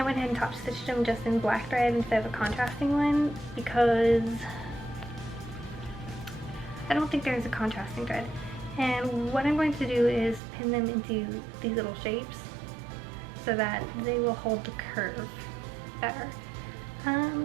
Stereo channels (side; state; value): left; drops out; at 10.4 s